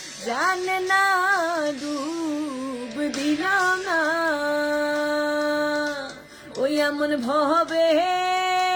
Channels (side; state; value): both; identical; correlation 1.00